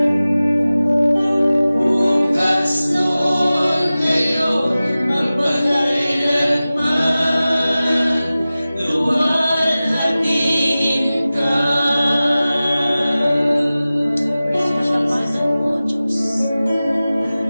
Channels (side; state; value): both; inverted; correlation -0.96